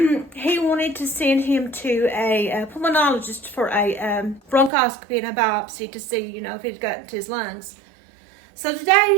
wanted to send him to a pulmonologist for a bronchoscopy and a biopsy to see, if it got into his lungs. So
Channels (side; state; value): left; drops out; at 4.7 s